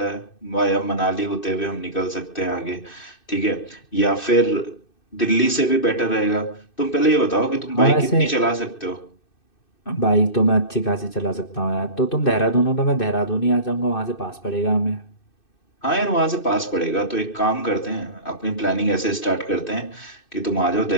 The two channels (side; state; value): right; late; 2.6 ms